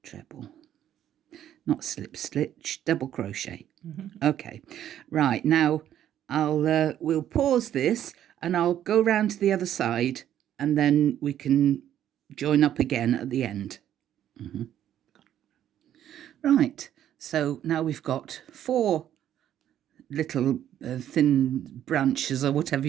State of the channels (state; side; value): quieter; left; 11.0 dB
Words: treble. Not slip stitch, double crochet. Okay, right, now we'll pause this and I'll go round to the other side and then we can join up again at the end. Right, so now we've got 4 little thin branches or whatever